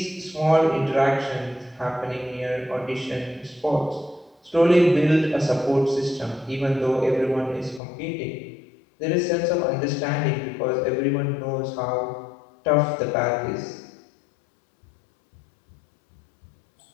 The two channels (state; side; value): drops out; right; at 7.8 s